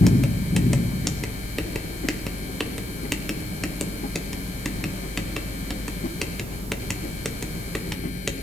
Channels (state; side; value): normal; both; correlation 0.82